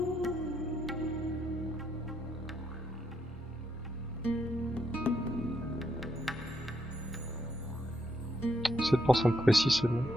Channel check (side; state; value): both; normal; correlation 0.77